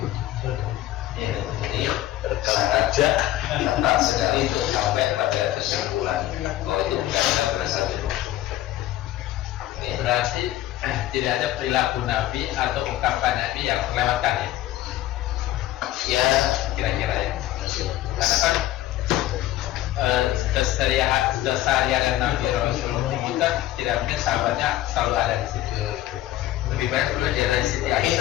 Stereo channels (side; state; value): right; quieter; 14.5 dB